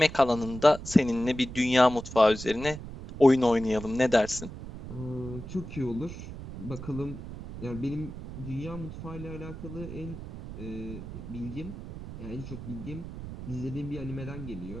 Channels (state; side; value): noise; right; rumble, 11 dB below the sound